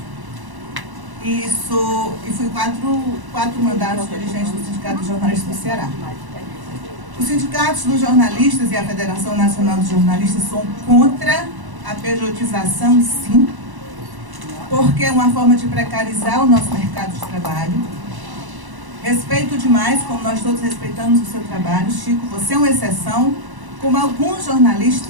e fui quatro mandatos dirigentes do Sindicato de Jornalistas do Ceará. Os sindicatos dos jornalistas e a Federação Nacional dos Jornalistas são contra a pejotização, sim, porque é uma forma de precarizar o nosso mercado de trabalho. Respeito demais, como nós todos respeitamos o seu trabalho. Chico, você é uma exceção, como alguns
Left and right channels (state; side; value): late; left; 1.1 ms